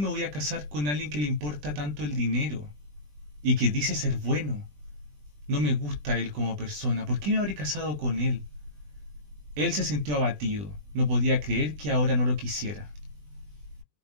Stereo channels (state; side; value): late; left; 20 ms